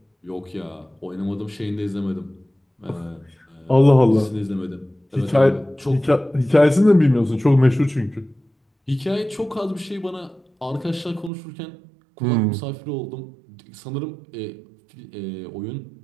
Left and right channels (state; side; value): drops out; left; at 11.3 s